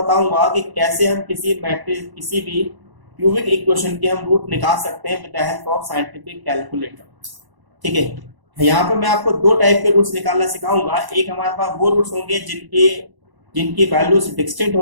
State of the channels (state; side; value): late; left; 1.0 ms